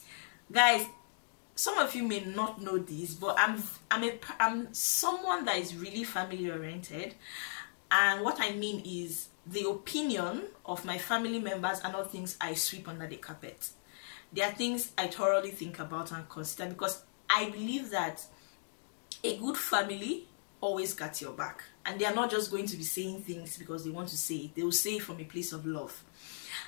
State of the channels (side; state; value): right; silent; digital silence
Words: guys. Some of you may not know this, but I'm someone that is really family oriented, and what I mean is the opinion of my family members are not things I sweep under the carpet. They are things I thoroughly think about and consider, because I believe that a good family always got your back, and they are not just going to be saying things because they want to say it. They will say it from a place of love.